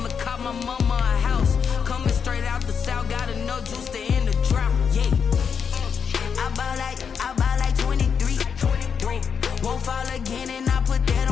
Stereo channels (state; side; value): quieter; right; 6.7 dB